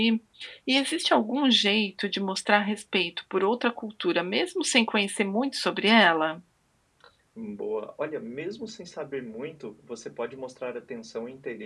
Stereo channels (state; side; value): identical; both; correlation 1.00